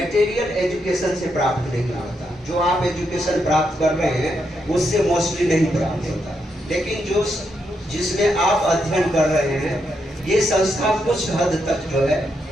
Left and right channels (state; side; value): normal; both; correlation 0.81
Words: एजुकेशन से प्राप्त नहीं होता, जो आप एजुकेशन प्राप्त कर रहे हैं उससे मोस्टली नहीं प्राप्त होता, लेकिन जो जिसमें आप अध्ययन कर रहे हैं ये संस्था कुछ हद तक जो है